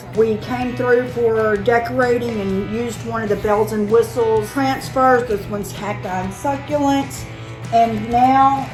We came through for decorating and used one of the bells and whistles transfers. This one's Cacti and Succulents, and now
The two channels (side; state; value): both; identical; correlation 1.00